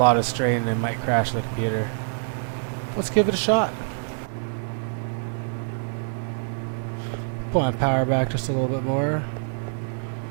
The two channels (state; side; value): silent; left; 61 dB below the other